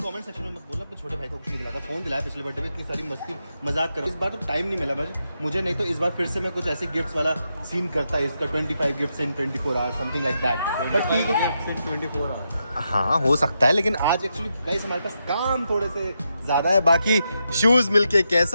सेक्शन में मत बोलना अपने छोटे भाई को कुछ नहीं दिलाता फोन दिलाया पिछले बर्थडे में इतनी सारी मस्ती मजाक करो इस बार तो टाइम नहीं मिला मुझे नहीं तो इस बार फिर से मैं कुछ ऐसे गिफ्ट्स वाला सीन करता है इसका 25 gifts in 24 hours something like that but ठीक है 24 आवर्स हाँ हो सकता है लेकिन आज एक्चुअली गाइस हमारे पास काम थोड़े से ज्यादा है बाकी शूज मिलके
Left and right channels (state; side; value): inverted; both; correlation -0.85